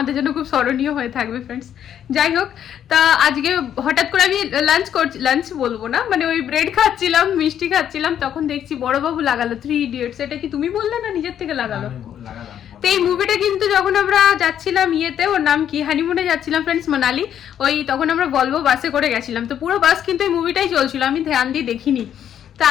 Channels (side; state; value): right; quieter; 9.8 dB